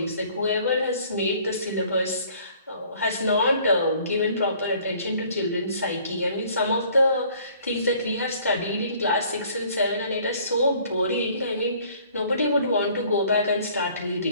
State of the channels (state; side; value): inverted; both; correlation -0.56